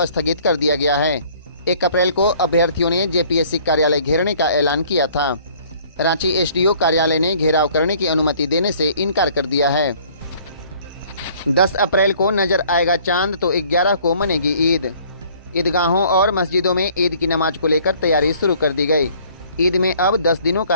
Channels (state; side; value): inverted; both; correlation -0.56